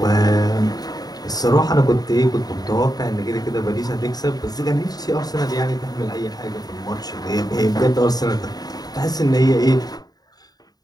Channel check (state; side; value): late; right; 0.19 ms